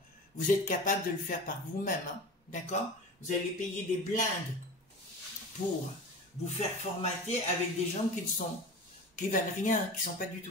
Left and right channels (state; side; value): normal; both; correlation 0.33